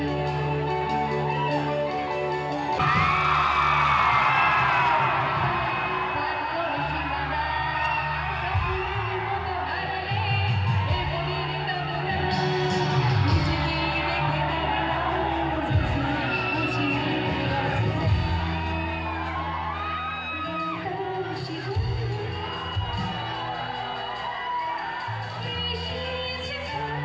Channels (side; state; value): both; identical; correlation 1.00